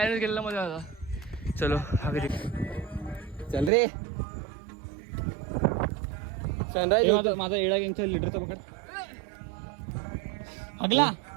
केलेला मजा आला. चलो आगे चल रे. सनराइज. माझा एडा गँगचा लिटरचा पकड. अगला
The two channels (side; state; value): left; drops out; at 3.7 s